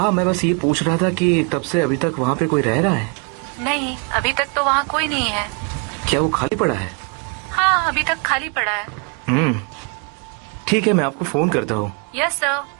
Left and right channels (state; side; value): quieter; left; 35.0 dB